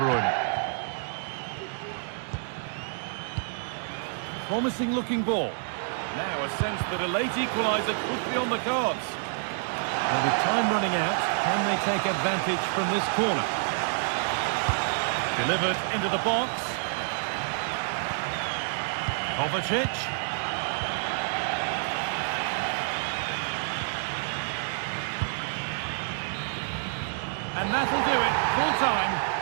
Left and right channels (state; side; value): silent; left; digital silence